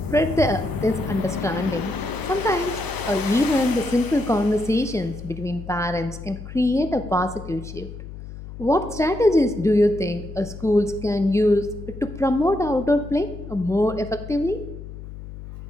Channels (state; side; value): noise; left; hum, 12 dB below the sound